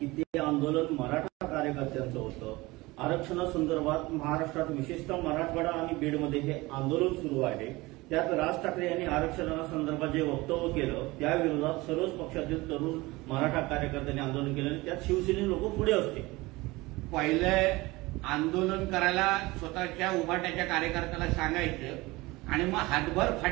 ते आंदोलन मराठा कार्यकर्त्यांचं होतं. आरक्षणासंदर्भात महाराष्ट्रात विशेषतः मराठवाडा आणि बीडमध्ये हे आंदोलन सुरू आहे. त्यात राज ठाकरे यांनी आरक्षणासंदर्भात जे वक्तव्य केलं त्या विरोधात सर्वच पक्षातील तरुण मराठा कार्यकर्त्यांनी आंदोलन केलं आणि त्यात शिवसेने लोक पुढे असते. पहिले आंदोलन करायला स्वतःच्या उभाट्याच्या कार्यकर्त्याला सांगायचं आणि मग हातभर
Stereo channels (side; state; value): left; quieter; 21.5 dB